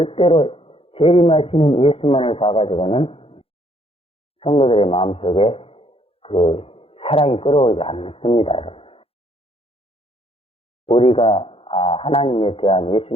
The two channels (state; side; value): late; right; 0.27 ms